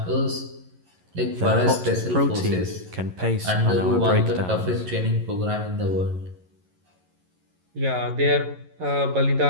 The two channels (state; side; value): late; left; 11 ms